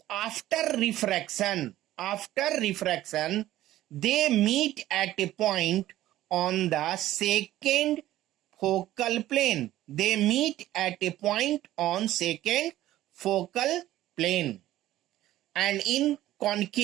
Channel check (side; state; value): left; quieter; 14.4 dB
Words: After refraction, they meet at a point on the second focal plane. They meet at a point on second focal plane. And in